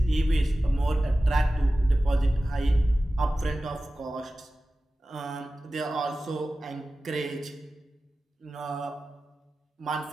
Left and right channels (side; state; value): both; normal; correlation 0.95